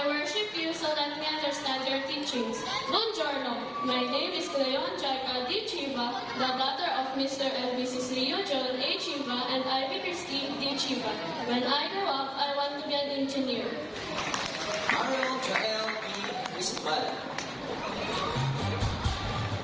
worship you, so let me understand your teachings. Buongiorno. My name is Cleon Jaika D. Chiva, the daughter of Mr. and Mrs. Leo John A. Chiva and Ivy Christine D. Chiva. When I grow up, I want to be an engineer. Mario Jael E. Isbala.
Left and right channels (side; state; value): both; identical; correlation 1.00